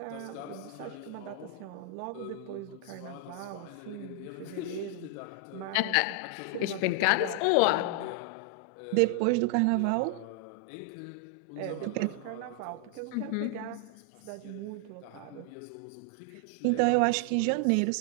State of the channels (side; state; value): both; different; correlation 0.00